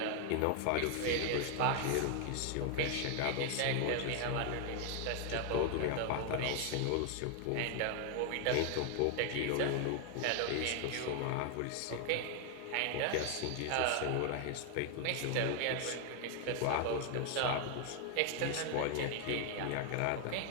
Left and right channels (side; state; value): both; different; correlation 0.00